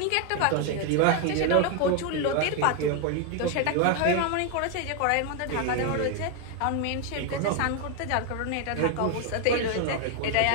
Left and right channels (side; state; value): both; different; correlation 0.01